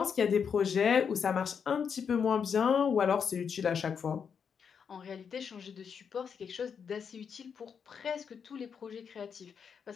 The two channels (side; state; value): right; quieter; 6.8 dB